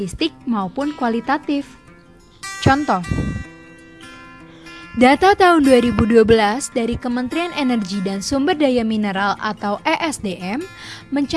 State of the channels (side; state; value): both; identical; correlation 1.00